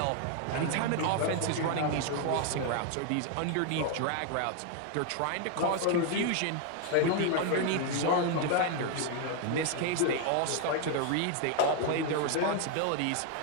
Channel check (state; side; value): different; both; correlation 0.00